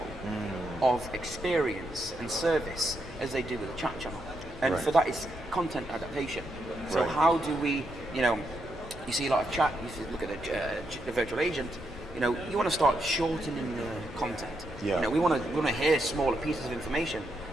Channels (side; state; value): both; normal; correlation 0.81